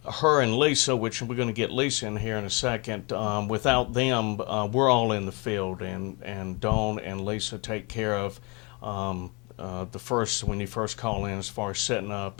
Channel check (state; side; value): quieter; right; 29.7 dB